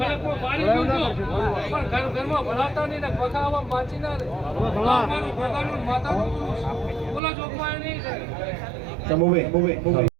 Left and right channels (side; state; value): left; drops out; at 7.2 s